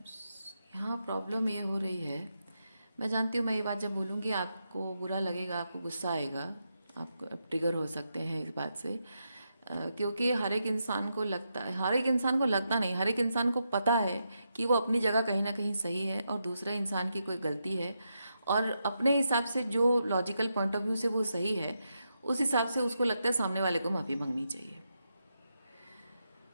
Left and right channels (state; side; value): inverted; both; correlation -0.84